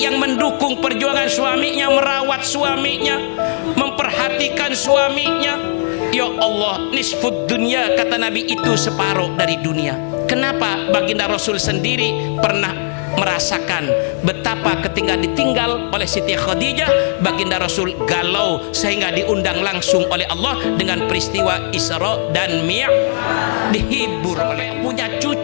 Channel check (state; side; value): silent; right; digital silence